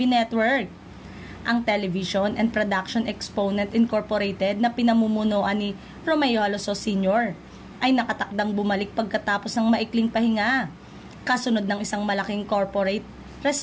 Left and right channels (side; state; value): both; identical; correlation 1.00